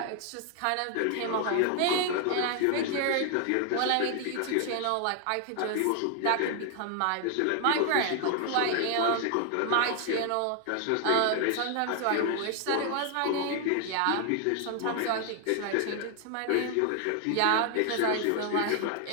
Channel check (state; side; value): different; both; correlation 0.00